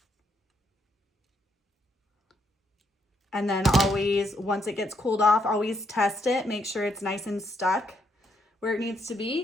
And then always, once it gets cooled off, always test it. Make sure it's nice and stuck where it needs to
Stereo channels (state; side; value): normal; both; correlation 0.75